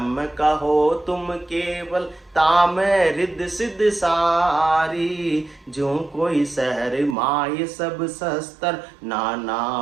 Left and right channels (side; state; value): left; drops out; at 7.2 s